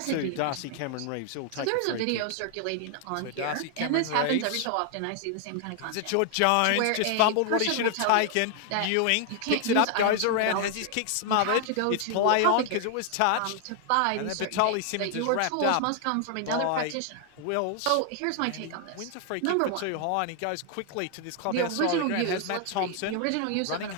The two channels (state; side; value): different; both; correlation 0.00